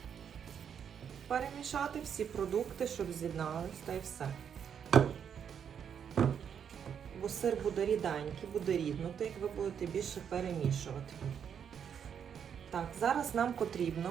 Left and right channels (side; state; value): left; quieter; 7.9 dB